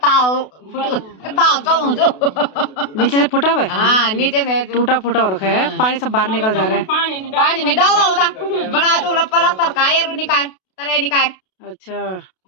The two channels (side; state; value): right; late; 32 ms